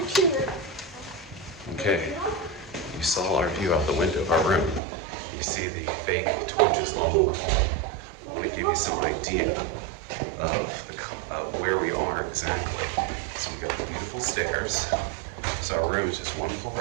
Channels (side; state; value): left; drops out; at 4.8 s